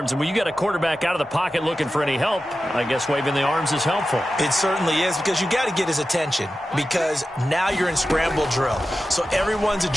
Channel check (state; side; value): normal; both; correlation 0.93